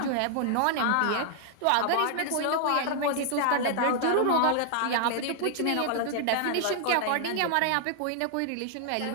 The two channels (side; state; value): both; different; correlation -0.01